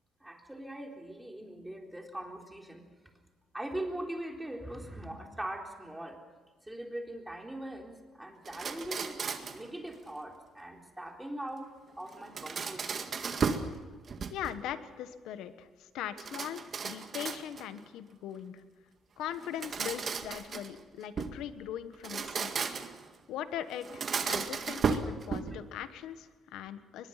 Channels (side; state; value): both; normal; correlation 0.73